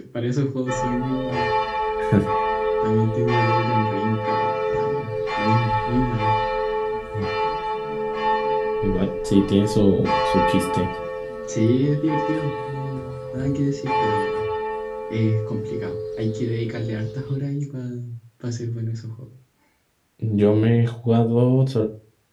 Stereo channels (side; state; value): both; identical; correlation 1.00